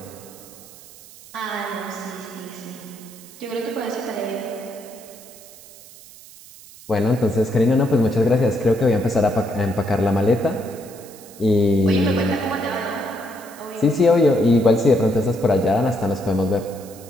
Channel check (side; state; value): right; noise; hiss, 20 dB below the sound